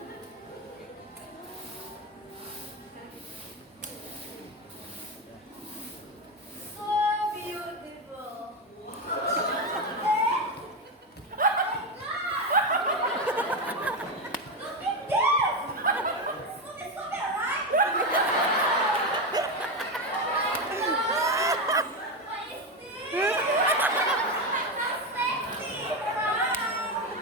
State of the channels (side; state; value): both; normal; correlation 0.13